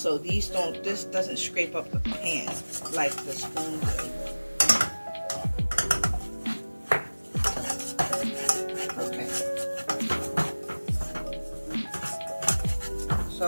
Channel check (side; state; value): both; inverted; correlation -1.00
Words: this doesn't scrape up the pan like the spoon does.